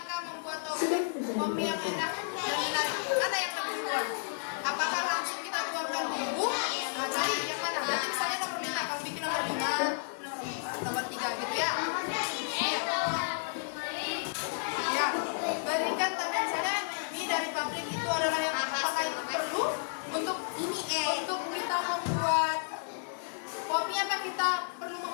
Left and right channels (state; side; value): silent; right; digital silence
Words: membuat kopi yang enak dan menarik. Mana yang lebih duluan? Apakah langsung kita tuangkan bumbu? Nah, cari yang mana? Nanti misalnya nomor 5, kamu bikin nomor 5, nomor 3 gitu ya. Ya, bandingkan tadi misalnya mie dari pabrik itu adalah yang apakah itu perlu untuk untuk kita membuat kopi, apa kita perlu